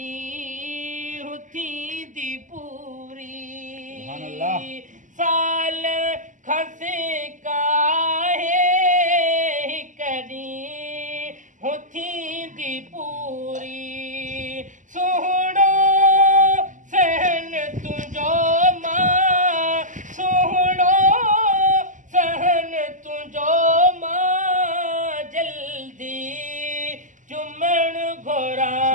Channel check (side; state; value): left; late; 0.37 ms